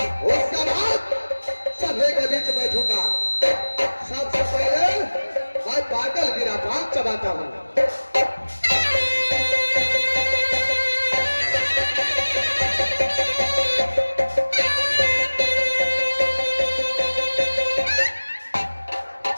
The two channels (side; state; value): both; inverted; correlation -1.00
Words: उसके बाद सभे के बीच बैठूंगा। सबसे पहले मैं पागल वीरा पान चबाता हूँ।